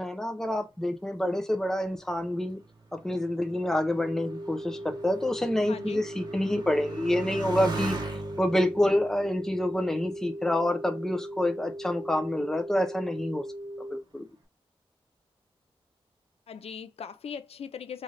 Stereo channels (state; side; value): normal; both; correlation 0.92